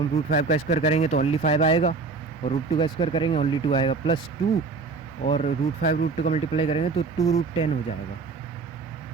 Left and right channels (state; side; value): quieter; left; 4.5 dB